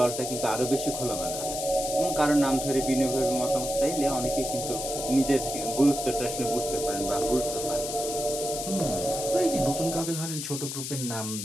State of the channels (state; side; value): noise; left; hiss, 5 dB below the sound